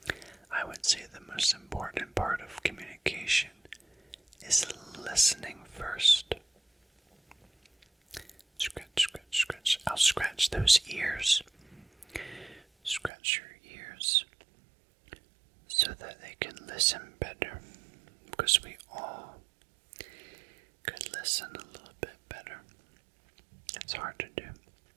I would say the most important part of communication is listening first. Scratch, scratch, scratch. I'll scratch those ears. Scratch your ears so that they can listen better, because we all could listen a little bit better. It's hard to do.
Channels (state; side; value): drops out; left; at 13.1 s